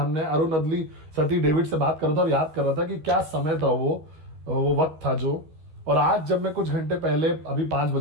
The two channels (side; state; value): left; late; 13 ms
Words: अरुण अदली, सती डेविड से बात कर रहा था और याद कर रहा था कि क्या समय था वो वक्त था जो। और आज जब मैं कुछ घंटे पहले, अभी 5